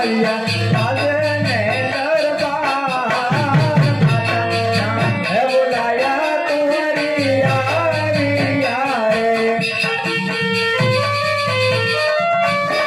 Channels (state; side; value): identical; both; correlation 1.00